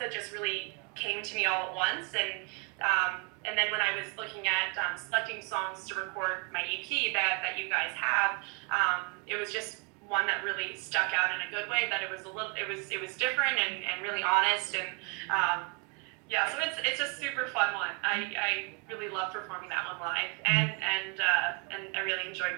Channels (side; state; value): left; quieter; 32.0 dB